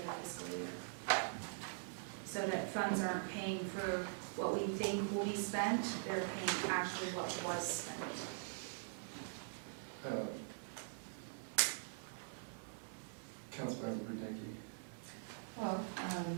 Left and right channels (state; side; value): silent; left; digital silence